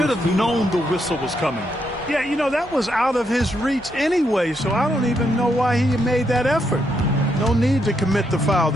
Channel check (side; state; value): both; normal; correlation 0.78